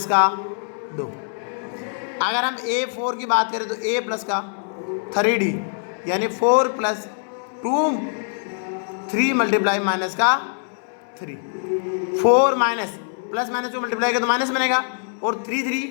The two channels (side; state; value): right; silent; 60 dB below the other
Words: का 2। अगर हम A4 की बात करें तो A प्लस का 3D, यानी 4 प्लस 3 मल्टीप्लाई माइनस का 3, 4 माइनस प्लस माइनस को मल्टीप्लाई करें तो माइनस बनेगा, और